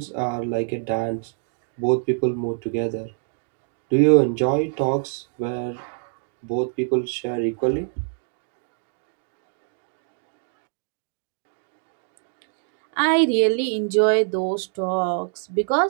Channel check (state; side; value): silent; left; digital silence